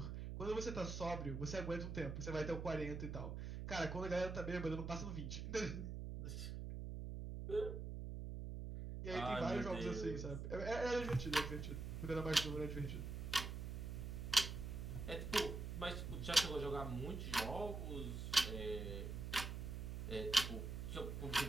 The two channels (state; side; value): noise; right; hum, 4 dB below the sound